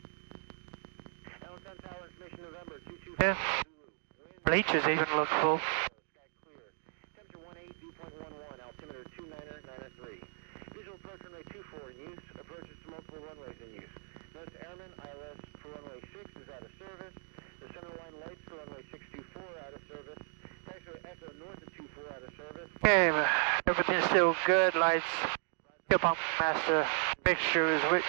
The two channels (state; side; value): silent; left; 54 dB below the other